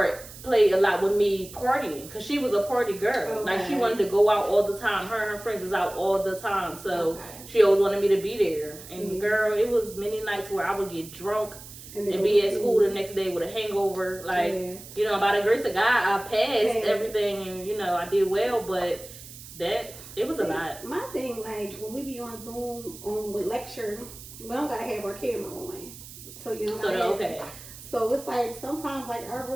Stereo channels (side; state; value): right; noise; hiss, 16 dB below the sound